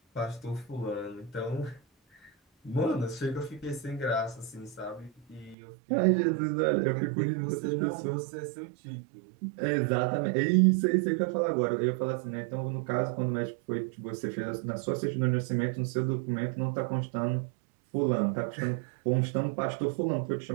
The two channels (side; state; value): left; drops out; at 5.6 s